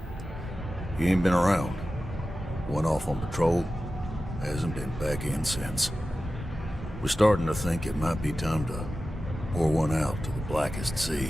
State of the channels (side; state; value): both; normal; correlation 0.94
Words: You ain't been around. Went off on patrol. Hasn't been back in since. We're starting to think it might be time to pour one out to the blackest